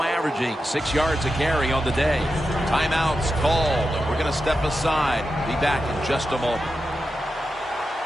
averaging 6 yards a carry on the day. Timeout's called. We're going to step aside. Be back in just a moment.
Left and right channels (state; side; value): normal; both; correlation 0.89